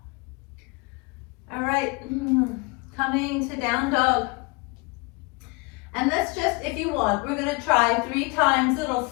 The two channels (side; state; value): right; quieter; 28.1 dB